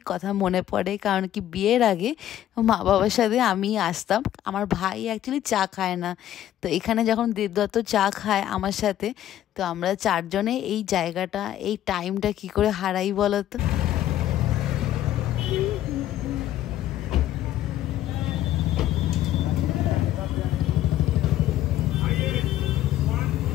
কথা মনে পড়ে, কারণ কি বিয়ের আগে মা বাবার সাথে আমি আসতাম। আমার ভাই অ্যাকচুয়ালি চা খায় না, তো এখানে যখন দেবদত্ত চা খায় আমার সাথে, তো আমরা চারজনে এই জায়গাটা এই টাইমটা কি করে হারাই বলো তো।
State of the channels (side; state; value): right; quieter; 12.4 dB